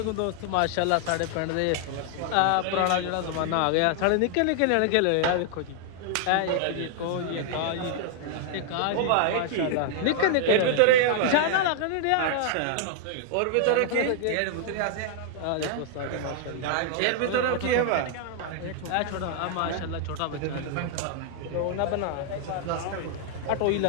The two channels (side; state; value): both; different; correlation 0.00